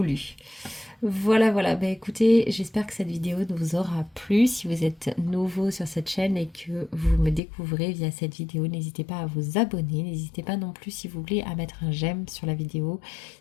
Voilà, voilà. Bah écoutez, j'espère que cette vidéo vous aura plu. Si vous êtes nouveau sur cette chaîne et que vous me découvrez via cette vidéo, n'hésitez pas à vous abonner. N'hésitez pas non plus, si vous voulez, à mettre un j'aime sur la vidéo.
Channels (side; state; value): right; drops out; at 7.4 s